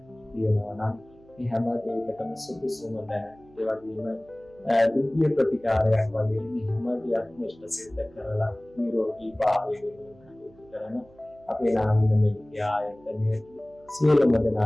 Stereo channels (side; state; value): right; noise; hum, 27 dB below the sound